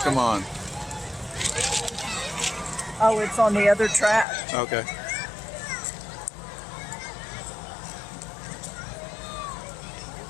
come on. Oh, it's on the other track. Okay.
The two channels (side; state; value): right; drops out; at 4.2 s